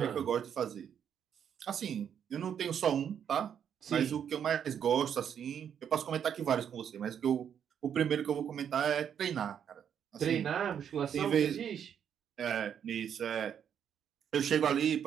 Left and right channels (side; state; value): left; quieter; 8.5 dB